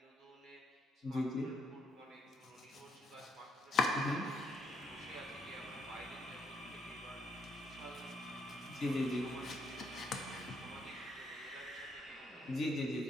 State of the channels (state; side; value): normal; both; correlation 0.73